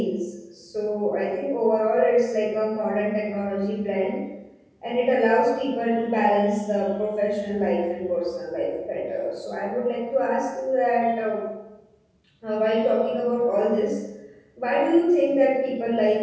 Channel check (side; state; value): both; identical; correlation 1.00